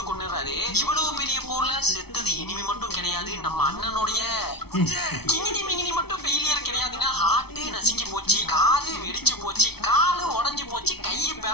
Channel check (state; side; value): late; right; 0.97 ms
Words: கொன்னுறாரு. இவ்வளவு பெரிய போர்ல செத்தது எனிமி மட்டும் கிடையாது, நம்ம அண்ணனுடைய கிங்கினி மிங்கினி மட்டும் ஃபெயிலியர் கிடையாதுங்க. ஹார்ட் நசுங்கி போச்சு, காது வெடிச்சு போச்சு, காலு உடைஞ்சு போச்சு, கையை